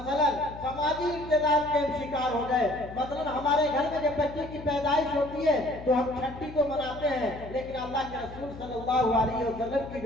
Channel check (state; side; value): noise; left; hum, 14 dB below the sound